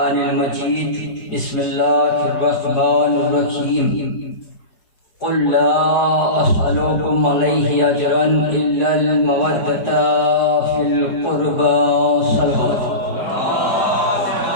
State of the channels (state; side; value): late; right; 4.8 ms